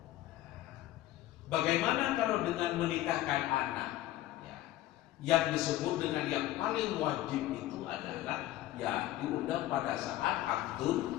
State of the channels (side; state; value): right; quieter; 14.9 dB